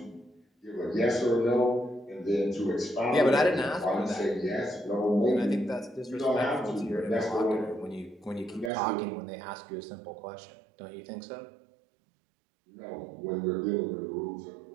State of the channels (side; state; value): left; drops out; at 8.7 s